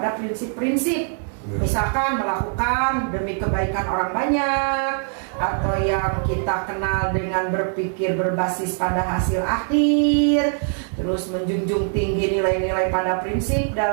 prinsip-prinsip. Misalkan melakukan demi kebaikan orang banyak, atau yang kita kenal dengan berpikir berbasis pada hasil akhir, terus menjunjung tinggi nilai-nilai pada prinsip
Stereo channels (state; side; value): silent; left; 57 dB below the other